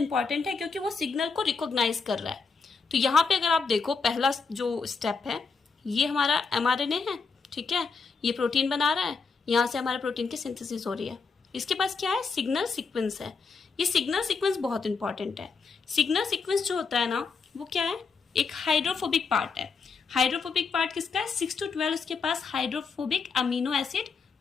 है क्योंकि वो सिग्नल को रिकॉग्नाइज कर रहा है। तो यहाँ पे अगर आप देखो, पहला जो स्टेप है ये हमारा एमआरएनए है, ठीक है, ये प्रोटीन बना रहा है, यहाँ से हमारे प्रोटीन की सिंथेसिस हो रही है। इसके पास क्या है, सिग्नल सीक्वेंस है। ये सिग्नल सीक्वेंस बहुत इंपॉर्टेंट है। सिग्नल सीक्वेंस जो होता है ना, वो क्या है, एक हाइड्रोफोबिक पार्ट है। हाइड्रोफोबिक पार्ट किसका है, 6 to 12 उसके पास हाइड्रोफोबिक अमीनो एसिड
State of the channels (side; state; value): right; quieter; 5.0 dB